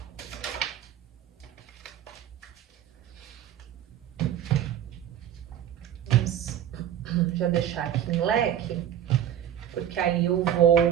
Vamos já deixar aqui em leque, porque aí eu vou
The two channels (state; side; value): quieter; left; 10.3 dB